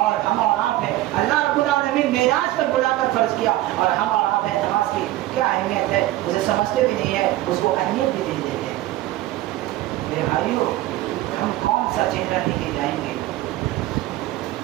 ہم اور آپ ہیں اللہ رب العالمین معراج پر بلا کر فرض کیا، اور ہم اور آپ ہیں نماز کی کیا اہمیت ہے اسے سمجھتے بھی نہیں ہے، اس کو اہمیت بھی نہیں دیتے۔ میرے بھائیو، ہم کون سا چہرہ لے کے جائیں گے؟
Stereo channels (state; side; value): quieter; left; 16.0 dB